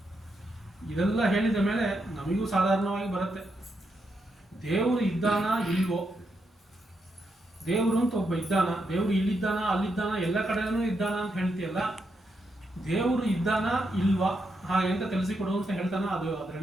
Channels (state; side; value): normal; both; correlation 0.82